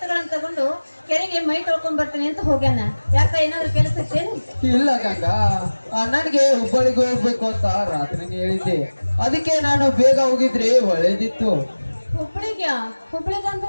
ತಗೊಂಡು ಕೆರೆಗೆ ಮೈ ತೊಳ್ಕೊಂಡ್ ಬರ್ತೀನಿ ಅಂತ ಹೋಗ್ಯಾನ. ಯಾಕ ಏನಾದ್ರು ಕೆಲಸ ಇತ್ತೇನು? ಇಲ್ಲ ಗಂಗಾ, ಅಣ್ಣನಿಗೆ ಹುಬ್ಬಳ್ಳಿಗೆ ಹೋಗ್ಬೇಕು ಅಂತ ರಾತ್ರಿನೇ ಹೇಳಿದ್ದೆ. ಅದಕ್ಕೆ ನಾನು ಬೇಗ ಹೋಗಿದ್ರೆ ಒಳ್ಳೇದಿತ್ತು. ಹುಬ್ಳಿಗ್ಯಾ?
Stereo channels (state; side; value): inverted; both; correlation -1.00